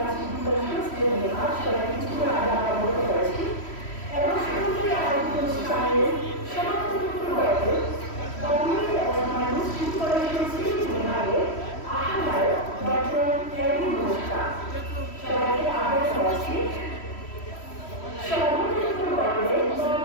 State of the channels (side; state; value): right; late; 3.1 ms